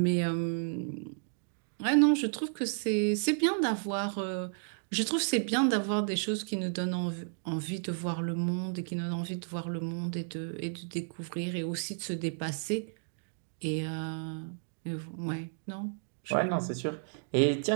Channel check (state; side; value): silent; left; digital silence